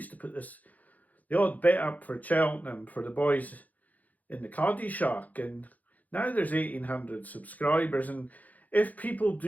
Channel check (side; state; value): right; late; 0.079 ms